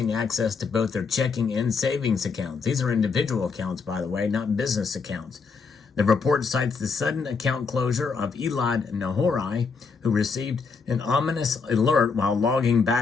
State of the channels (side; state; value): right; quieter; 5.1 dB